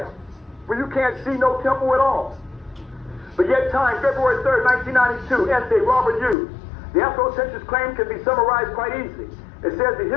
where you can't see no temple at all. But yet time, February 3rd, 1992, essay, Robert Hughes. The Afrocentrist claim can be summarized quite easily. It says the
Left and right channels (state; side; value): drops out; right; at 6.4 s